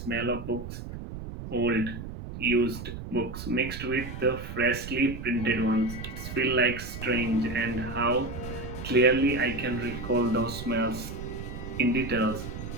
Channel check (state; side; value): noise; right; rumble, 9 dB below the sound